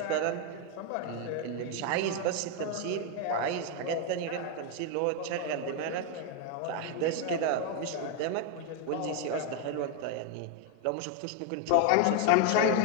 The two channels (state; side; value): different; both; correlation 0.01